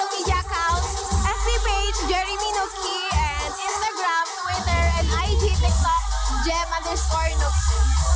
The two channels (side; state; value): both; identical; correlation 1.00